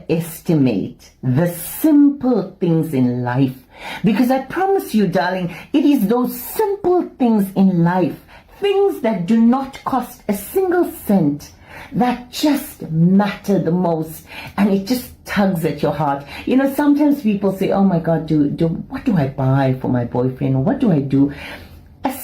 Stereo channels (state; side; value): identical; both; correlation 1.00